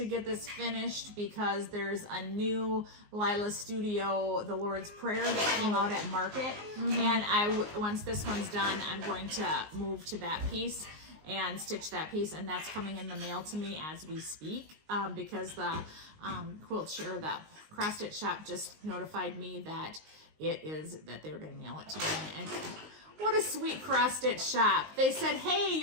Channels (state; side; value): late; left; 19 ms